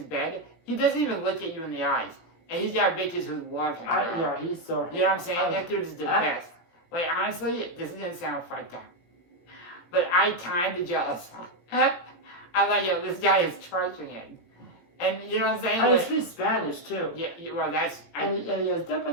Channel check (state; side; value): late; right; 18 ms